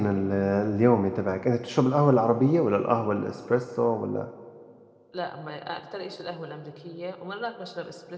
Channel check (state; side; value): identical; both; correlation 1.00